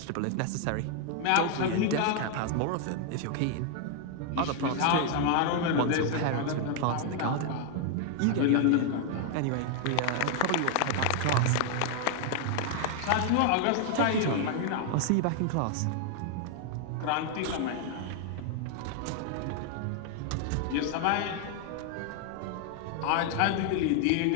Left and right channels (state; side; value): different; both; correlation 0.00